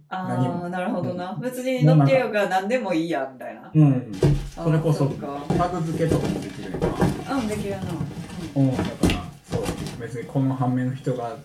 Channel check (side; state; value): both; identical; correlation 1.00